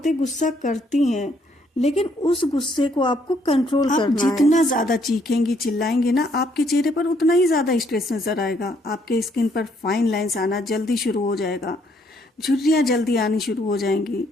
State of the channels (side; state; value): both; normal; correlation 0.69